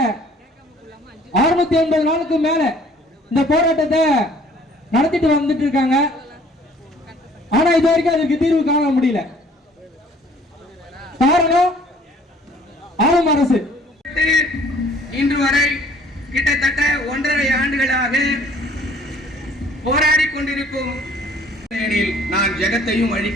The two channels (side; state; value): both; normal; correlation 0.56